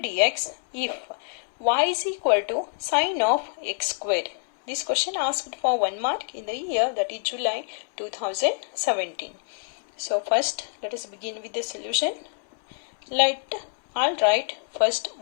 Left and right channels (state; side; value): silent; right; 61 dB below the other